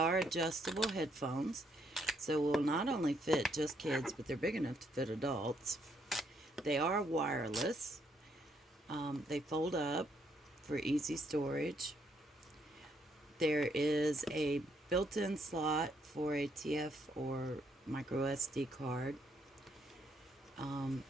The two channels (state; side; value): normal; both; correlation 0.73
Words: adjustable headphones, so will not only fit just kids, but they're big enough to fit adults. They are wireless. They fold up for easy storage. There is a built-in slot for a TF or micro SD card. And